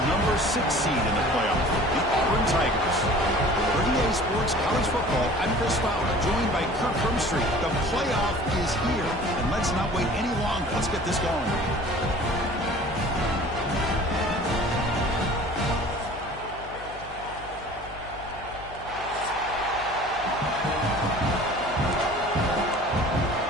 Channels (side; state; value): left; noise; hum, 17 dB below the sound